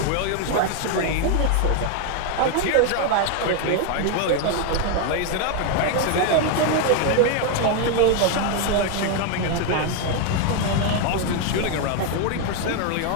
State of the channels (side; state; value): both; different; correlation 0.01